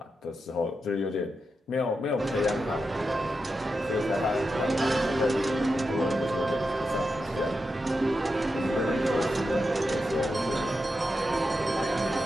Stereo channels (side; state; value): both; normal; correlation 0.88